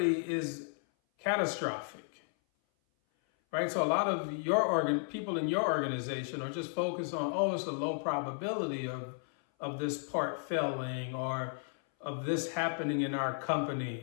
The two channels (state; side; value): silent; right; 55 dB below the other